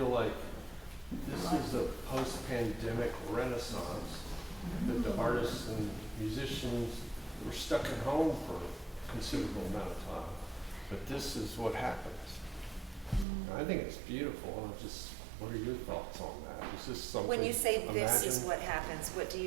like this is a post-pandemic renaissance, that the artists and musicians were stuck at home for a considerable amount of time. But this is what happens. I think it's beautiful. What are your thoughts on that? Is this something? When you say this is imagine- what happens, what do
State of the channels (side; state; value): left; drops out; at 13.2 s